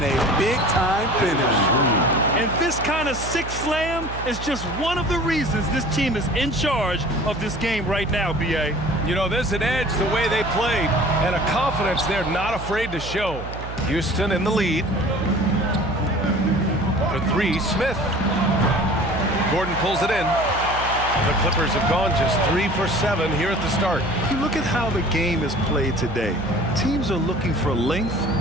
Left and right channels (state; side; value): noise; right; hum, 9 dB below the sound